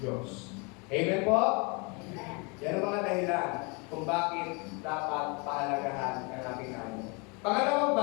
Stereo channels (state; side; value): quieter; right; 30.9 dB